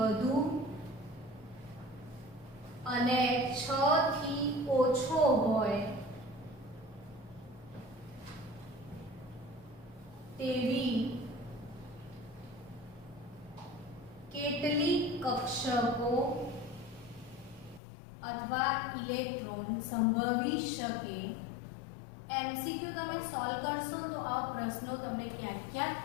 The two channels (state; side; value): drops out; right; at 17.8 s